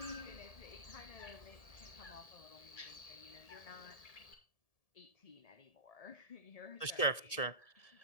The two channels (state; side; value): late; right; 1.7 ms